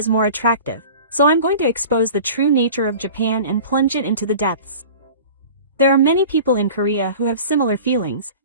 more attractive, so I'm going to expose the true nature of Japan and plunge it into the depths. There are many people in Korea who have similar feelings,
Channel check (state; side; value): inverted; both; correlation -0.40